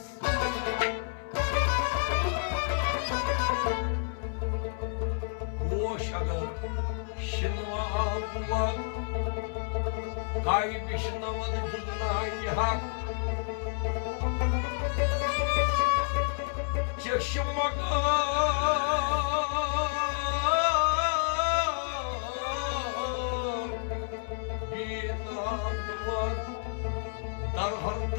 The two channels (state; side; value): silent; right; 58 dB below the other